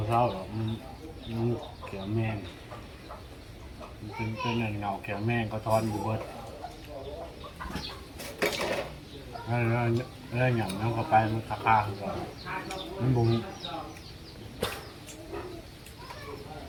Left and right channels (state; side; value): identical; both; correlation 1.00